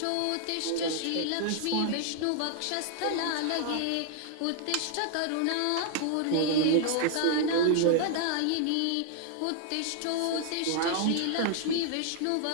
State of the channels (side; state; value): both; different; correlation 0.00